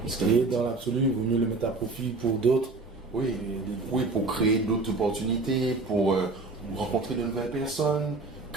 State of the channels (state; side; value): quieter; left; 3.5 dB